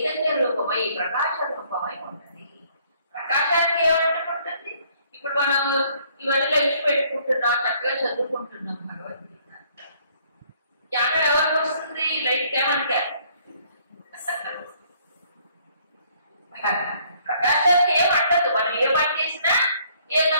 రూపమై ప్రకాశ రూపమై ఉంటుంది. ప్రకాశానికి ఏమంటుంది? ఇప్పుడు మనం ఇవన్నీ లైట్ పెట్టుకుంటున్నాం, చక్కగా చదువుకుంటున్నాం భగవద్గీత. జ్ఞానం ఎవరికి వస్తుంది? లైట్ ఏమంటే ప్రకాశానికి ఏమంటదు. మనం ఏ పని చేసినా, ఏ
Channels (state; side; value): inverted; both; correlation -0.63